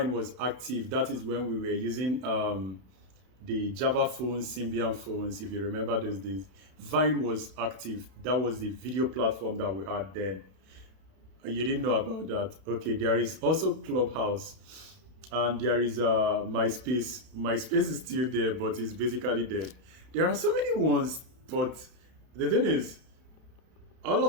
was active, that is when we were using the Java phones, Symbian phones, if you remember those days. Vine was active. That was the video platform that we had then. You didn't know about that. Okay, there is also Clubhouse, and there is MySpace. MySpace is still there, but it's basically dead. There are so many ones, but the thing is, all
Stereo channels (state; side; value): late; left; 32 ms